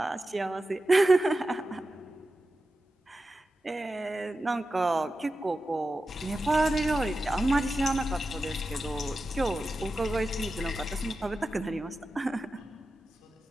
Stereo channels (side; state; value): both; normal; correlation 0.92